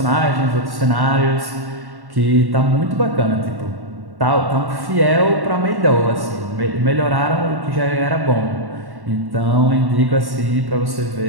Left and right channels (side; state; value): left; late; 1.1 ms